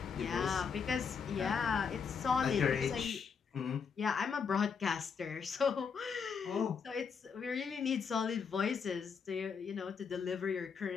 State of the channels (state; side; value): quieter; right; 6.1 dB